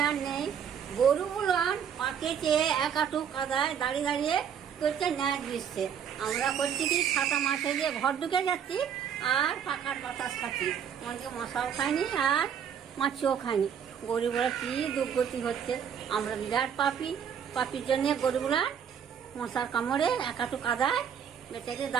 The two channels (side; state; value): left; quieter; 8.1 dB